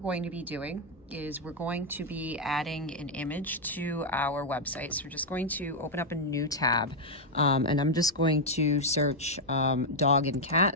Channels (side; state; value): both; normal; correlation -0.02